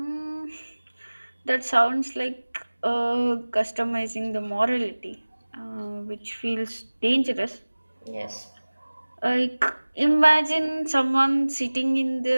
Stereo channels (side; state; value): both; inverted; correlation -1.00